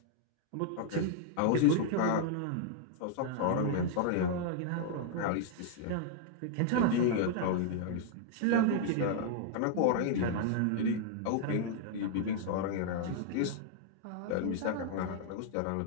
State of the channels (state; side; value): different; both; correlation -0.01